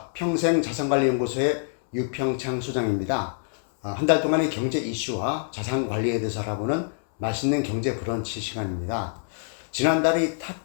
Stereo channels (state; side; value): silent; right; 61 dB below the other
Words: 평생자산관리연구소의 유평창 소장입니다. 한 달 동안의 경제 이슈와 자산관리에 대해서 알아보는 맛있는 경제 브런치 시간입니다. 지난달에 이